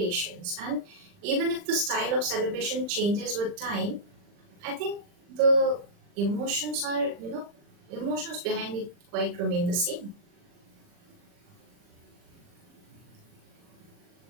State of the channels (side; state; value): left; late; 40 ms